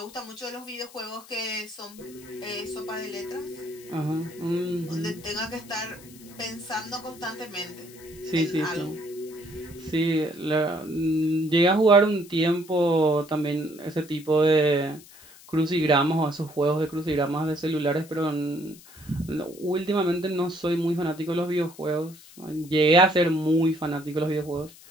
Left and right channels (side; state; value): left; noise; hiss, 21 dB below the sound